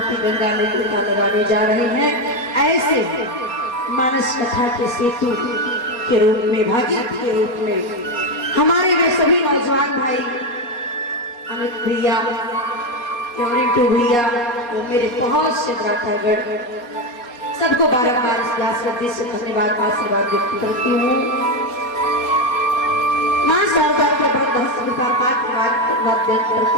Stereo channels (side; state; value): right; late; 4.2 ms